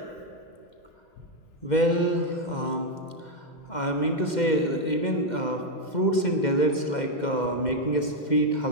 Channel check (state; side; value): late; right; 2.1 ms